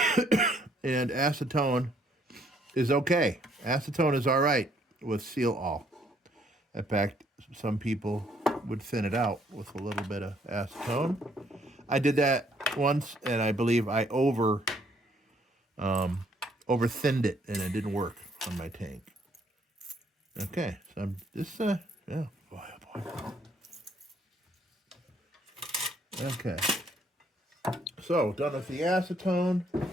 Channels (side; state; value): both; normal; correlation 0.66